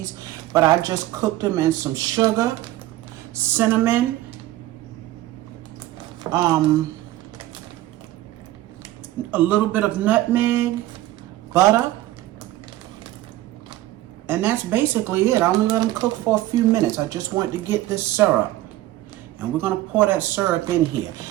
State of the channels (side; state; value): left; quieter; 15.4 dB